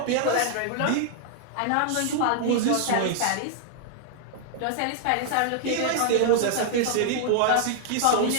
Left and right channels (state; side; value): different; both; correlation 0.00